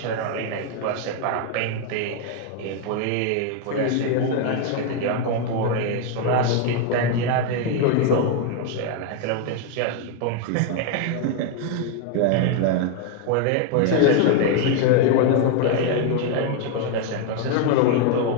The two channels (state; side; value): different; both; correlation 0.01